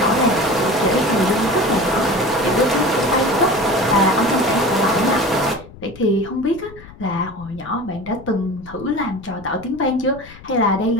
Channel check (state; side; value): noise; left; rumble, 19 dB below the sound